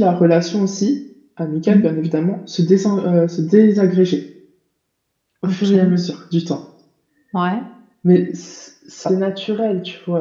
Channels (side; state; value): both; identical; correlation 1.00